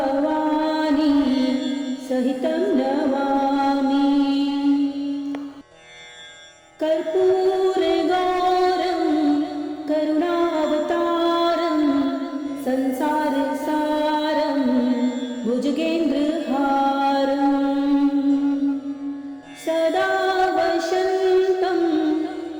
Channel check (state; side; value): identical; both; correlation 1.00